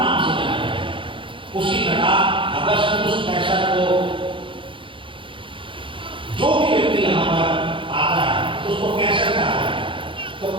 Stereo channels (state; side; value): late; left; 0.25 ms